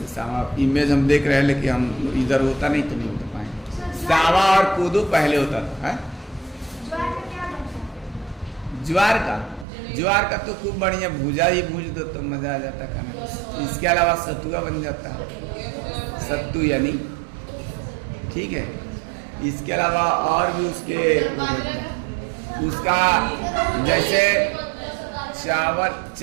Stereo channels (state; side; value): drops out; left; at 9.7 s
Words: सावा इमेज हम देख रहे हैं, लेकिन हम इधर होता नहीं तो नहीं होता पाएंगे। सावा और कोदो पहले होता था, है? ज्वार का तो खूब बढ़िया भूजा ही भूज दो तो मजा आ जाता खाने। इसके अलावा सतुआ बन जाता है, सत्तू यानी, ठीक है। इसके अलावा और भी उसका जैसे